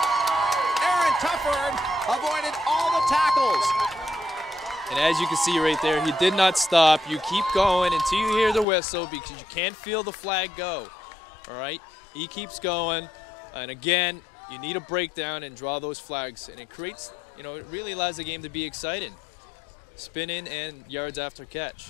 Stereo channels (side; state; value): right; drops out; at 8.7 s